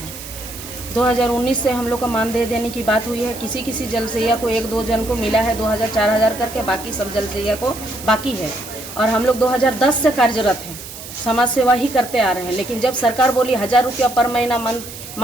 2019 से हम लोग का मानदेय देने की बात हुई है। किसी किसी जलसैया को 1-2 जन को मिला है 2000-4000 करके, बाकी सब जलसैया को बाकी है। और हम लोग 2010 से कार्यरत हैं, समाज सेवा ही करते आ रहे हैं। लेकिन जब सरकार बोली 1000 रुपया पर महीना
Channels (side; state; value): right; noise; hiss, 13 dB below the sound